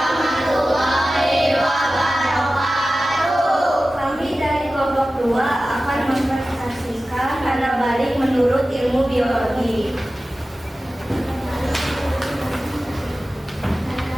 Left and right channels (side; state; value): both; normal; correlation 0.95